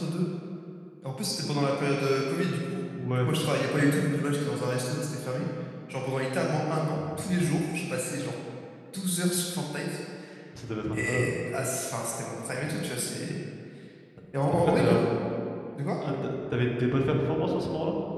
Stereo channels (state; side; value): identical; both; correlation 1.00